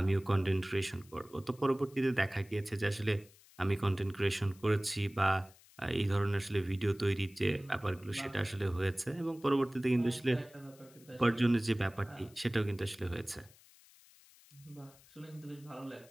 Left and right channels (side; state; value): left; noise; hiss, 26 dB below the sound